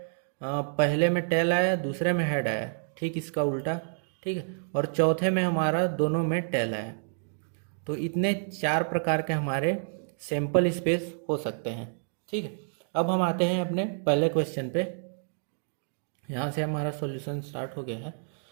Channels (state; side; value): silent; left; digital silence